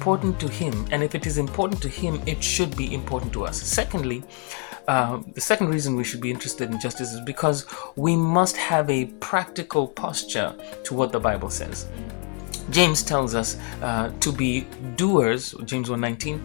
to him, and if it is important to him, it should be important to us. Secondly, the second reason we should be interested in justice is because we must have a practical posture to what the Bible says. James tells us to be doers, James 1:19,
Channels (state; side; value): quieter; right; 33.2 dB